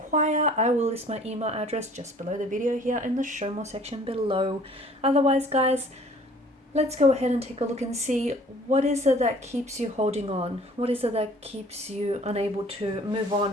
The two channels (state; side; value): normal; both; correlation 0.53